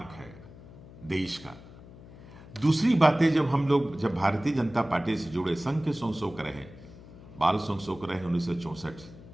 है देश का। दूसरी बातें, जब भारतीय जनता पार्टी से जुड़े, संघ के संशोक रहे, बाल संशोक रहे 1964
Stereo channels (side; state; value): left; noise; hum, 18 dB below the sound